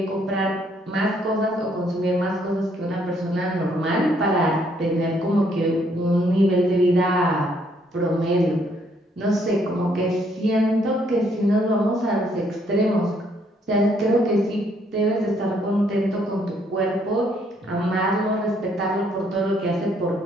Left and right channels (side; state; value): both; normal; correlation 0.69